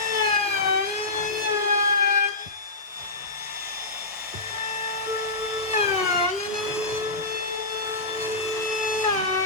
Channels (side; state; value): right; quieter; 3.2 dB